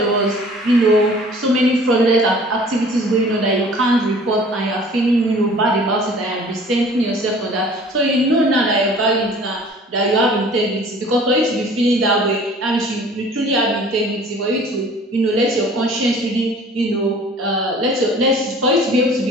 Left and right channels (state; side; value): normal; both; correlation 0.49